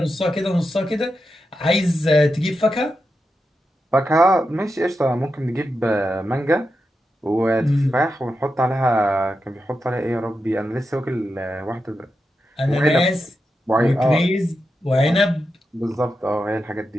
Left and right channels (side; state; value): both; normal; correlation 0.88